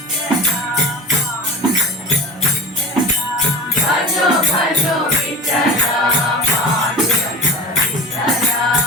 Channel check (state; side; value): normal; both; correlation 0.34